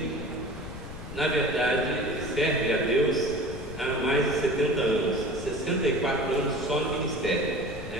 na verdade, serve a Deus há mais de 70 anos, 64 anos só no ministério,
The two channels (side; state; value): left; noise; rumble, 11 dB below the sound